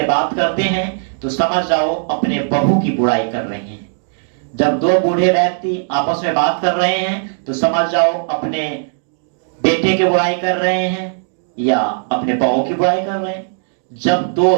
बात करते हैं तो समझ जाओ अपने बहू की बुराई कर रहे हैं। जब दो बूढ़े व्यक्ति आपस में बात कर रहे हैं तो समझ जाओ अपने बेटे की बुराई कर रहे हैं या अपने बहू की बुराई कर रहे हैं। जब दो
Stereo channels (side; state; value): left; silent; digital silence